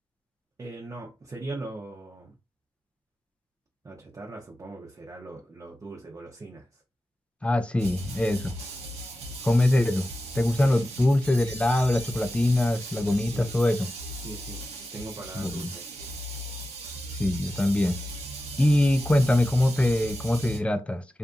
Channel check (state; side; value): normal; both; correlation 0.93